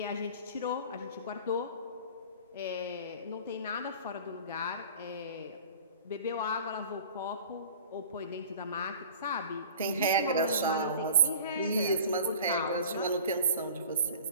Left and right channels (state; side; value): inverted; both; correlation -0.42